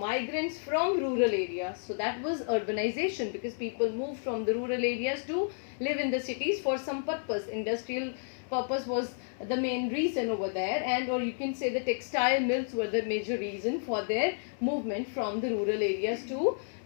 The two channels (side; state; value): right; silent; 57 dB below the other